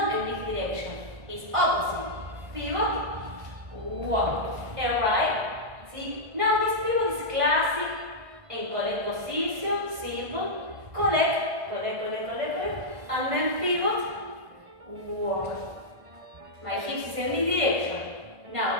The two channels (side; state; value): left; late; 1.5 ms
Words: in this direction, it's opposite. Pivot, walk. Alright? See? Now this pivot is classic. And collect position, simple, collect, and then pivot, walk. My hips is in this direction.